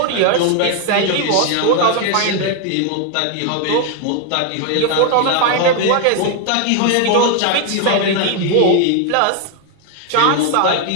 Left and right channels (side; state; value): both; different; correlation 0.01